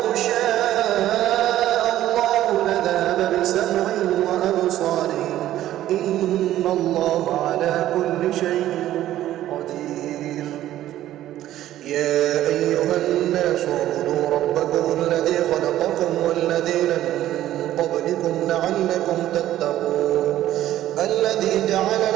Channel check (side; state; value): left; quieter; 13.3 dB